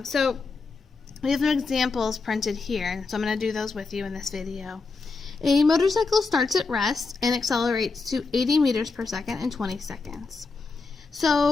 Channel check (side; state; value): right; quieter; 4.2 dB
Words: So we have some examples printed here, so I'm going to do those with you in this video. A motorcycle starts at rest and accelerates to 80 meters per second in 20 seconds.